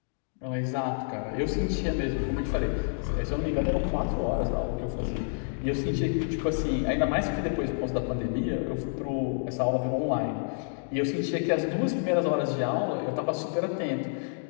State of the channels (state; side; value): silent; right; digital silence